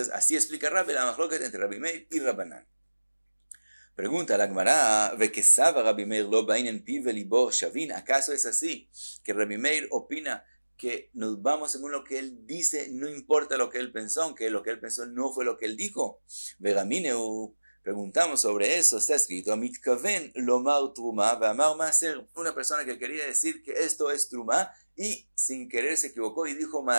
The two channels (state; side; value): inverted; both; correlation -1.00